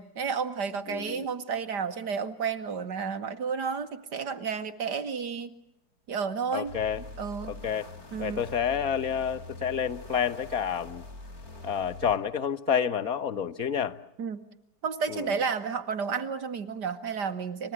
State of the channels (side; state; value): left; late; 5.0 ms